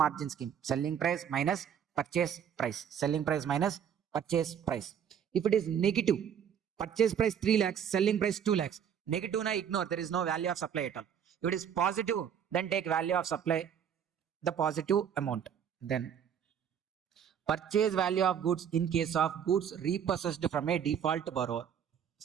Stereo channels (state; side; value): quieter; left; 8.4 dB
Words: scheme. Selling price minus purchase price. Selling price minus purchase price. If it is negative, purchase price 3 lakhs, selling price 2 lakhs. Negative na ignore. There is no value of supply at all. If it is positive, then take value of supply, the positive amount. Then purchase value of goods in case of goods repossessed from a default borrower.